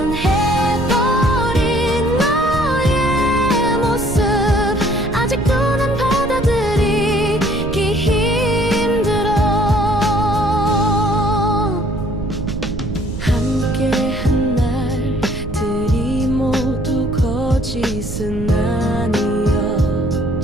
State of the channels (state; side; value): noise; right; rumble, 7 dB below the sound